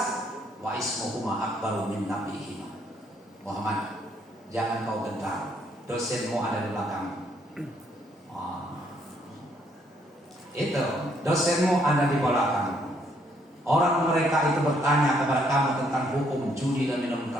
wa ismuhuma akbaru min nabihima. Muhammad, jangan kau gentar. Dosenmu ada di belakang. Itu dosenmu ada di belakang. Orang mereka itu bertanya kepada kamu tentang hukum judi dan minum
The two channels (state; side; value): normal; both; correlation 0.70